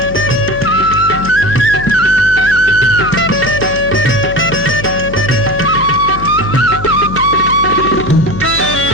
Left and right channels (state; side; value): noise; left; hum, 10 dB below the sound